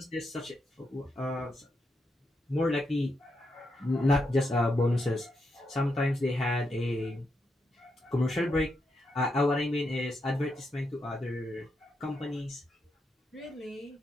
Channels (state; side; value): normal; both; correlation 0.83